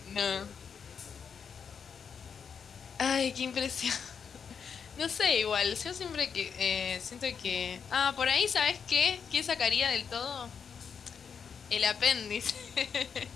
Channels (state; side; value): quieter; right; 6.7 dB